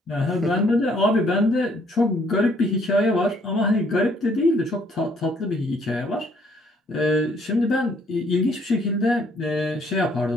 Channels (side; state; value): both; normal; correlation 0.65